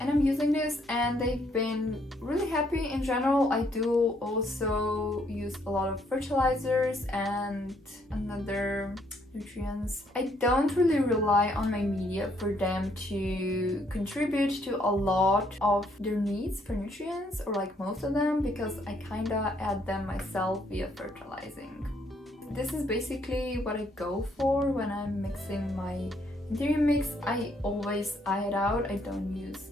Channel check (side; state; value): both; normal; correlation 0.69